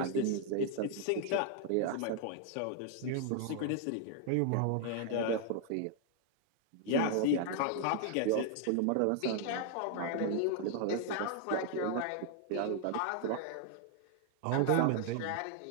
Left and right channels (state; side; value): different; both; correlation 0.00